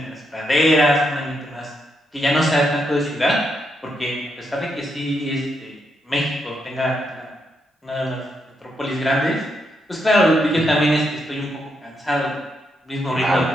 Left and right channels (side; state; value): both; normal; correlation 0.80